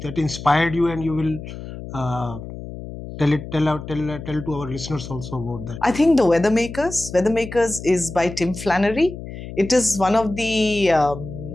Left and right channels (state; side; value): noise; left; hum, 11 dB below the sound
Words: that inspired you, and you will tell to our listeners also about that. I think The Weathermakers. Weathermakers is by Tim Flannery. It is one of the